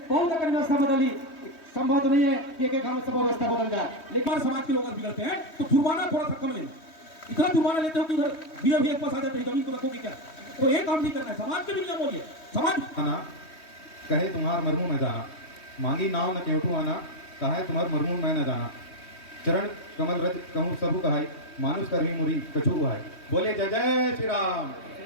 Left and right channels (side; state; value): right; late; 3.2 ms